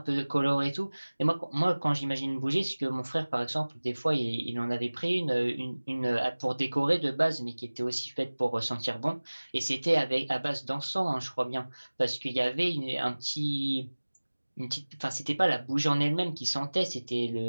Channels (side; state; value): both; inverted; correlation -1.00